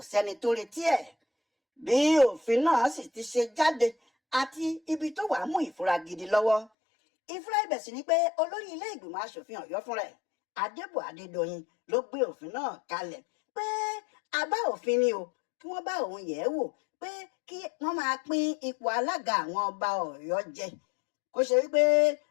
sẹ́ni tó retí ẹ̀. Bí òfin náà sì ti ṣe jáde àti ibi tó wàá mú ìfura gidi lọ́wọ́. Ìfura ibẹ̀ sì ni pé olórí ilé ìgbìmọ̀ aṣòfin Ọ̀yọ́ fúnra ẹ̀, Adébọ̀ Adédoyin, ló gbé òfin náà kalẹ̀ pé àbá òfin ni o, kí wọ́n bá òun yẹ̀ ẹ́ wò pé kí wọ́n máa pín ipò alága àwọn ọba Ọ̀yọ́ jẹ. Kó ṣe wípé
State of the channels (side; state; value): right; drops out; at 6.7 s